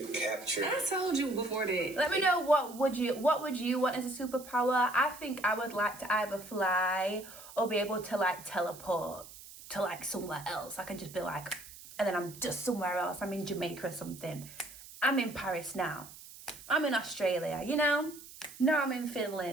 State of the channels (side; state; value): right; noise; hiss, 17 dB below the sound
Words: capture. I told you before that. Let me know what would you want as a superpower. I think I would like to either fly or be able to like teleport to like somewhere else. I could just be like, and then I'm just somewhere else. I'm in Jamaica or something. I'm in Paris now. I'm in Australia, you know? Now I'm in